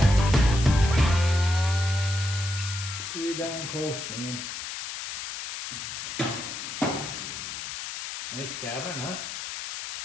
Pretty darn close, man. Nice cabinet, huh?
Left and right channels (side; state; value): left; noise; hiss, 7 dB below the sound